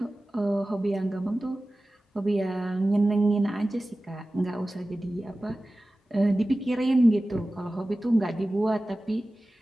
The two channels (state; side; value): normal; both; correlation 0.96